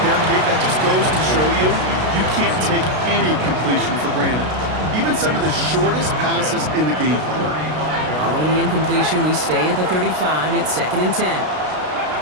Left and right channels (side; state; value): left; late; 33 ms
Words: Kate, that just goes to show you, you can't take any completion for granted. Even some of the shortest passes in the game plan. Following the incompletion, we stay at the 35. It's 2nd and 10.